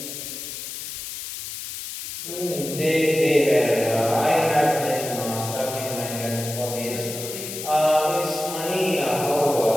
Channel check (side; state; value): left; noise; hiss, 8 dB below the sound